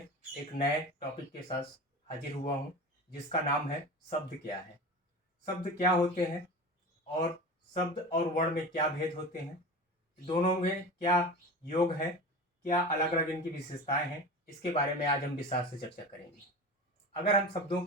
एक नए टॉपिक के साथ हाजिर हुआ हूँ, जिसका नाम है शब्द क्या है। शब्द क्या होते हैं और शब्द और वर्ण में क्या भेद होते हैं, दोनों में क्या योग है, क्या अलग अलग इनकी विशेषताएं हैं, इसके बारे में आज हम विस्तार से चर्चा करेंगे। अगर हम शब्दों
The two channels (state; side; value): normal; both; correlation 0.31